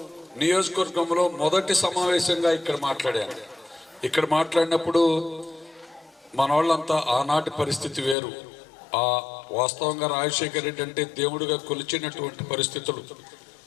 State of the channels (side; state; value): right; drops out; at 8.2 s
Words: నియోజకవర్గంలో మొదటి సమావేశంగా ఇక్కడ మాట్లాడాను. ఇక్కడ మాట్లాడినప్పుడు మన వాళ్ళంతా ఆనాటి పరిస్థితి వేరు. ఆ వాస్తవంగా రాజశేఖర రెడ్డి అంటే దేవుడిగా కొలిచినటువంటి పరిస్థితులు.